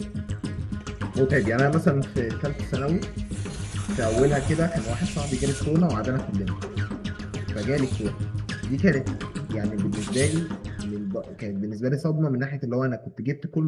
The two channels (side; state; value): both; identical; correlation 1.00